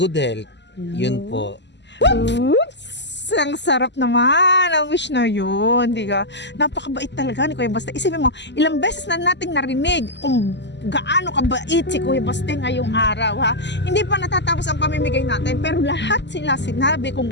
health. Yun po. Oops! Ang sarap naman ang wish na yun, di ka? Napakabait talaga ni Kuya Baste. Isipin mo, ilang beses na nating narinig kung gaano kabait si Kuya Baste ngayong araw, ha? Hindi pa natatapos ang pamimigay natin, pero lahat sila sinabi kung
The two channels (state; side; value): late; right; 0.51 ms